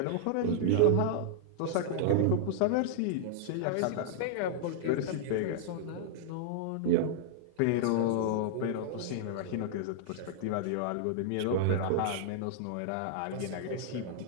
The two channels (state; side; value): different; both; correlation -0.01